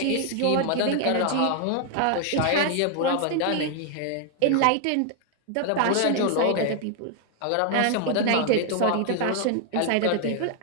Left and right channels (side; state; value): both; different; correlation 0.00